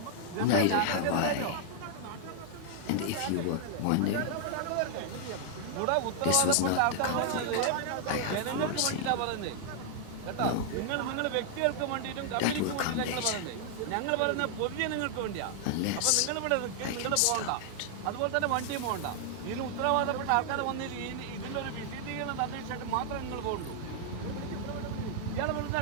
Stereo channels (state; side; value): different; both; correlation 0.00